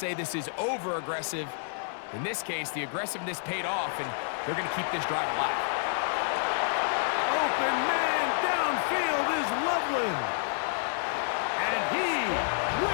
this is over-aggressive, in this case, the aggressiveness paid off, and they're going to keep this drive alive. Open man downfield is Loveland. And he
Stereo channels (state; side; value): silent; right; 56 dB below the other